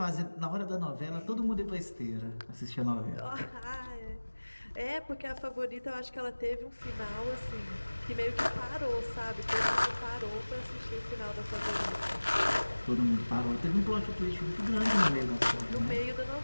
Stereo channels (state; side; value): inverted; both; correlation -1.00